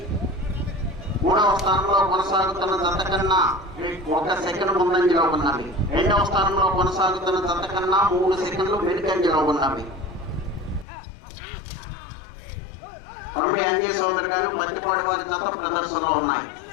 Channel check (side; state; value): right; drops out; at 10.9 s